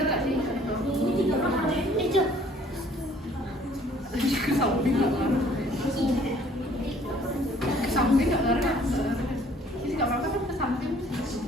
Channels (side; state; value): both; normal; correlation 0.58